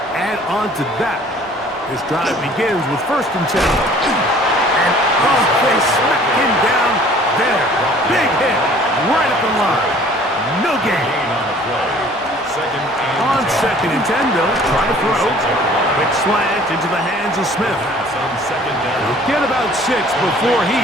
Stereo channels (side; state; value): both; normal; correlation 0.52